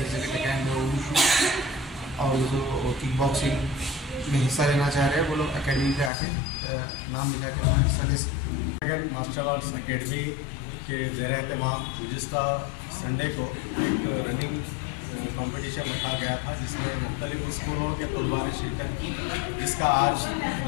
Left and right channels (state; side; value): drops out; right; at 6.1 s